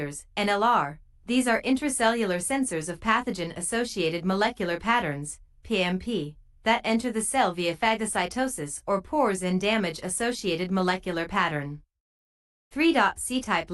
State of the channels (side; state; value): both; identical; correlation 1.00